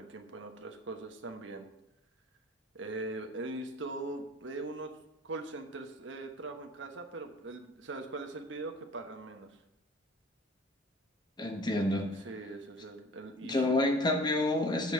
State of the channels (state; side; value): normal; both; correlation 0.47